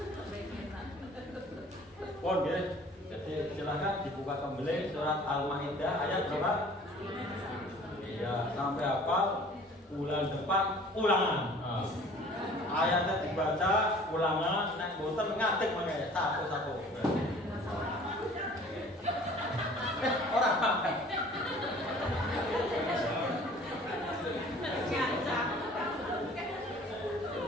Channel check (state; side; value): normal; both; correlation 0.49